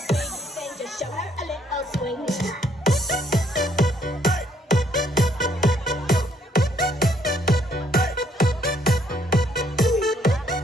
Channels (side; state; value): both; normal; correlation 0.68